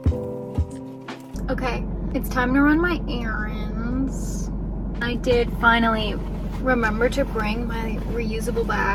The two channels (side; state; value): both; identical; correlation 1.00